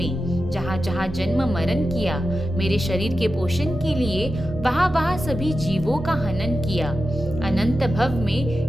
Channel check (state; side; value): normal; both; correlation 0.91